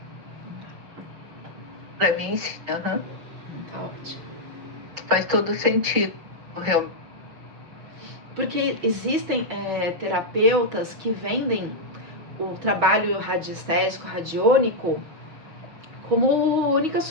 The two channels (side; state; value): left; late; 6.5 ms